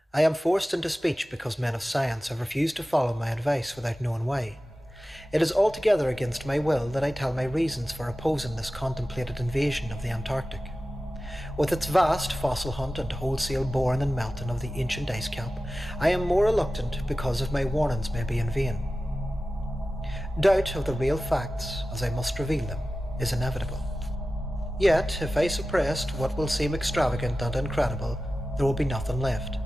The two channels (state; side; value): normal; both; correlation 0.95